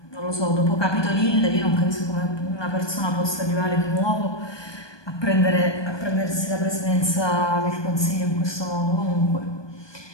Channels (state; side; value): late; right; 1.2 ms